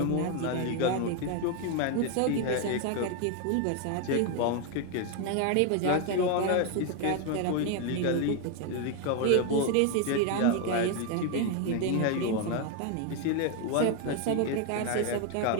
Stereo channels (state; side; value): different; both; correlation 0.01